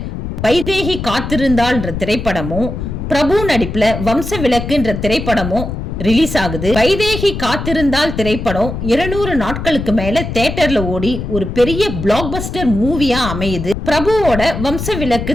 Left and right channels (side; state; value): left; noise; rumble, 6 dB below the sound